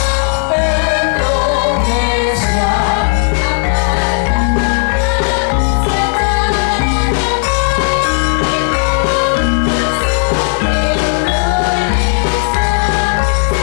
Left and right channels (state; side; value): silent; right; 56 dB below the other